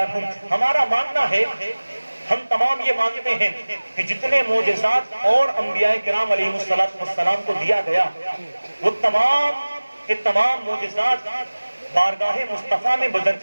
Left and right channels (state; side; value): inverted; both; correlation -1.00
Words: ہمارا ماننا ہے، ہم تمام یہ مانتے ہیں کہ جتنے معجزات اور انبیاء کرام علیہ السلام کو دیا گیا وہ تمام کے تمام معجزات بارگاہ مصطفیٰ میں